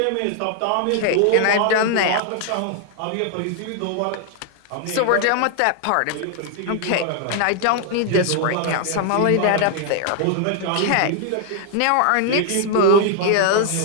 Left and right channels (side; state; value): both; different; correlation 0.00